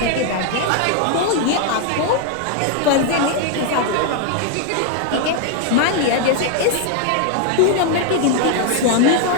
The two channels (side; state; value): both; different; correlation 0.00